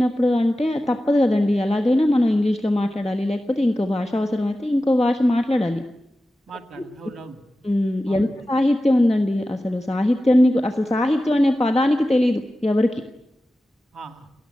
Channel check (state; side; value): normal; both; correlation 0.94